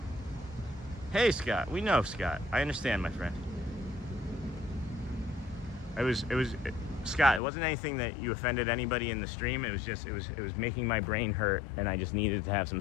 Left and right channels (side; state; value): right; drops out; at 7.4 s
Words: hey Scott, we know Scott. I understand, my friend. It was Scott. It wasn't anything that you offended anybody in the stream. It was just it was making my brain hurt, and I just needed to have some